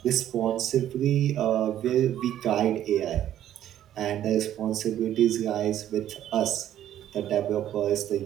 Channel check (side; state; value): left; quieter; 11.6 dB